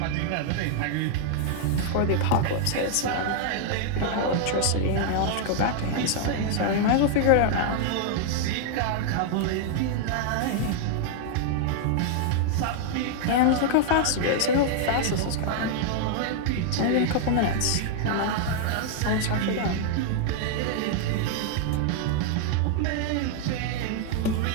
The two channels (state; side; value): different; both; correlation 0.00